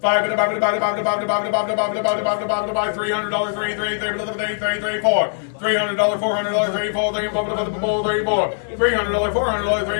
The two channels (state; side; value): silent; right; digital silence